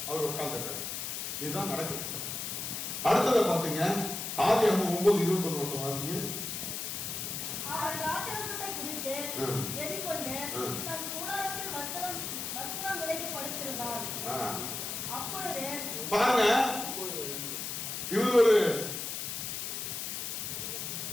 அவர் உட்கார்ந்துட்டார். இதுதான் நடக்குது. அடுத்ததை பாத்தீங்க, ஆதியாகமம் 9:21 வாசிங்க. பாருங்க, இவர் ஒரு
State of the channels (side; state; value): left; noise; hiss, 4 dB below the sound